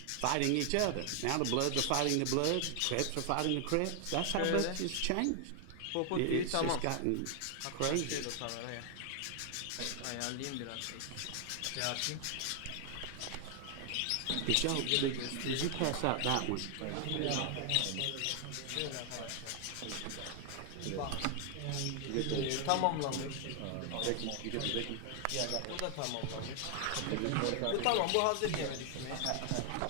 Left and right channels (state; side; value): different; both; correlation 0.00